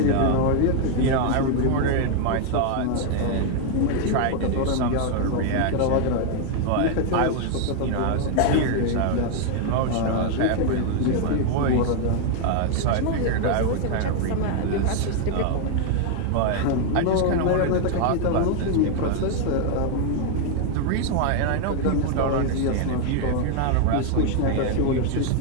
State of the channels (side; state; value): both; different; correlation 0.00